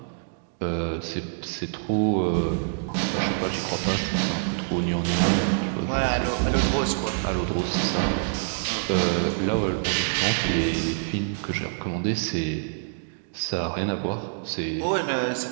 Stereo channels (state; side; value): silent; left; digital silence